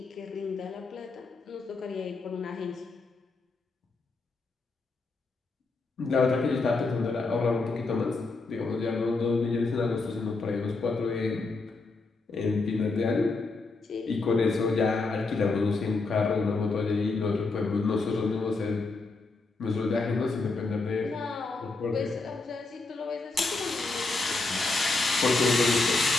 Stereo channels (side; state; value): right; quieter; 3.7 dB